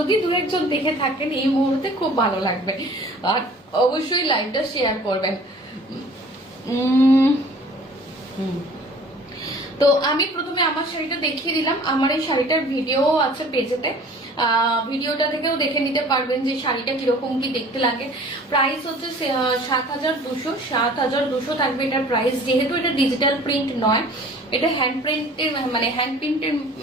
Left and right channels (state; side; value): normal; both; correlation 0.48